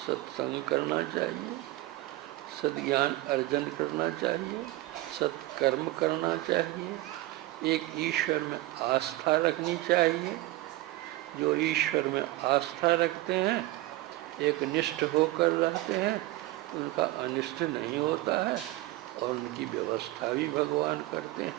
करना चाहिए, सद्ज्ञान अर्जन करना चाहिए, सत्कर्म करना चाहिए, एक ईश्वर में आस्था रखनी चाहिए। जो ईश्वर में आस्था रखते हैं, एक निष्ठ होकर रहते हैं, उनका अनिष्ट नहीं होता है, और उनकी व्यवस्था भी भगवान करते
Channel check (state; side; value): quieter; left; 18.0 dB